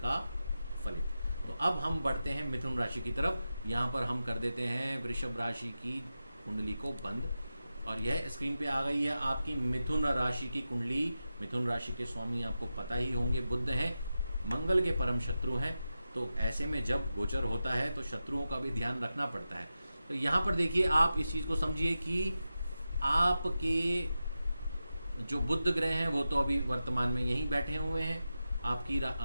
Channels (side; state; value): both; inverted; correlation -0.92